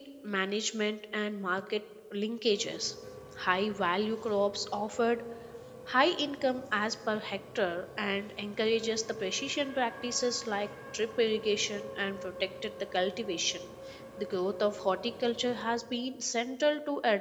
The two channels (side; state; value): both; identical; correlation 1.00